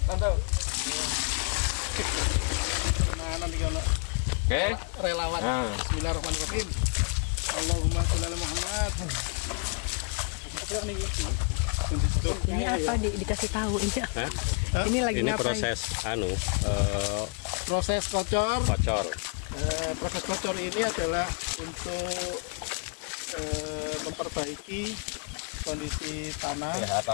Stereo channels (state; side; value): quieter; right; 37.7 dB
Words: tante. Nah, nanti kalau Oke. relawan. Nah. Bismillahirrahmanirrahim. Allahumma sholli ala Muhammad. Apa nih? Ini apa dikasih tahu ini? Ini lagi Ini ngapain? proses Proses kocor. kocor. Proses kocor ini adalah untuk memperbaiki kondisi tanah, Ya,